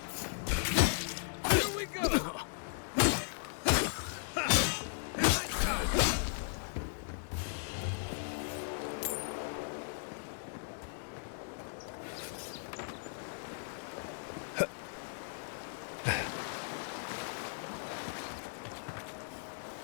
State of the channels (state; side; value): silent; right; digital silence